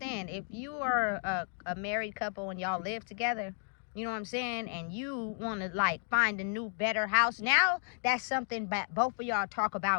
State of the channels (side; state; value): right; silent; 56 dB below the other